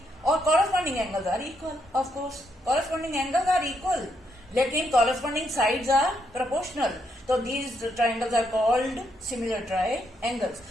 और corresponding angles are equal, of course corresponding angles are equal, लेकिन कॉरेस्पॉन्डिंग साइड्स आर प्रोपोर्शनल। तो these triangles are called similar triangles.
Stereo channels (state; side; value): normal; both; correlation 0.77